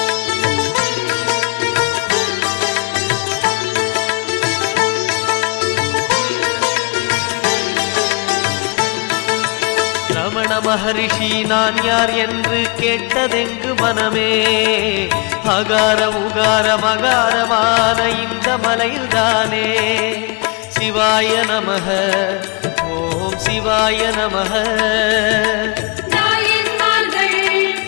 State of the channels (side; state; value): right; quieter; 31.5 dB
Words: ரமண மகரிஷி நான் யார் என்று கேட்டதெங்கு மனமே. அகார உகார மகாரமான இந்த மலையில்தானே. சிவாய நமஹ ஓம் சிவாய நமஹ.